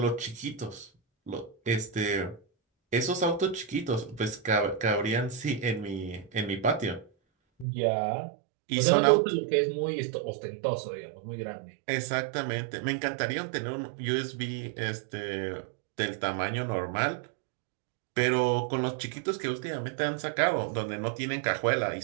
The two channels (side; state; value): left; drops out; at 7.7 s